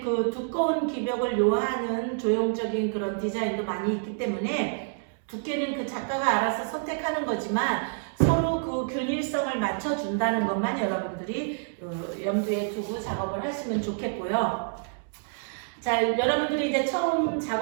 그 두꺼운 기벽을 요하는 조형적인 그런 디자인도 많이 있기 때문에 두께는 그 작가가 알아서 선택하는 거지만 서로 그 균일성을 맞춰준다는 것만 여러분들이 염두에 두고 작업을 하시면 좋겠고요. 자, 여러분들이 이제 처음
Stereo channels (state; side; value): silent; left; digital silence